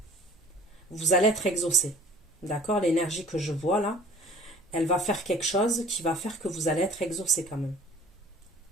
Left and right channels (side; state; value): both; normal; correlation 0.49